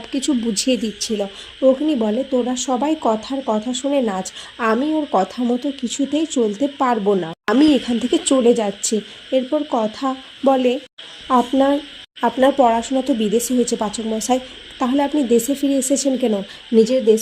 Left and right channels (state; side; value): identical; both; correlation 1.00